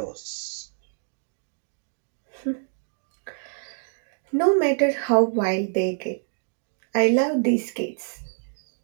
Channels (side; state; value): left; silent; 61 dB below the other